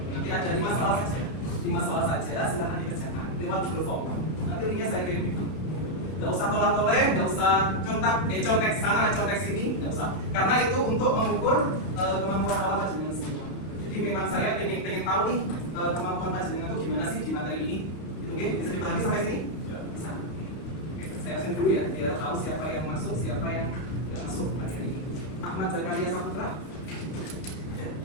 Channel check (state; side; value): late; right; 32 ms